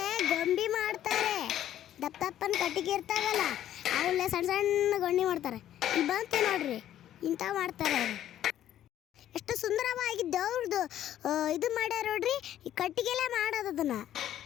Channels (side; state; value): right; quieter; 11.7 dB